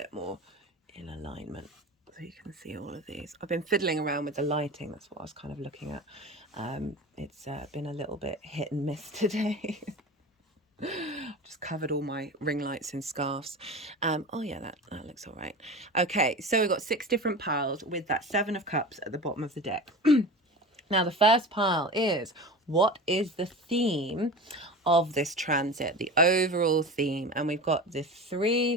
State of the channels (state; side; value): normal; both; correlation 0.31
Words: more in alignment so you can see all of these. I've been fiddling around with the lighting. That's what I was kind of looking at. It's been a little bit hit and miss today. Just covered all my ring lights in scarves. Oh yeah, that looks all right. Okay, so we've got 6 different piles with that 7 of cups at the bottom of the deck. Now, the first pile is, what is the theme of this transit, the overall theme? And we've got the